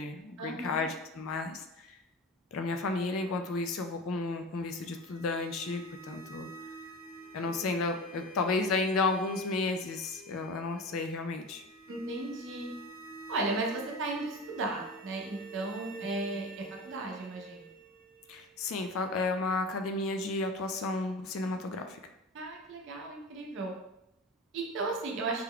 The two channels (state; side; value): normal; both; correlation 0.31